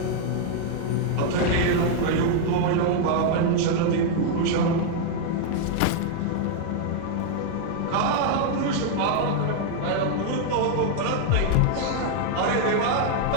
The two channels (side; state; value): both; different; correlation 0.00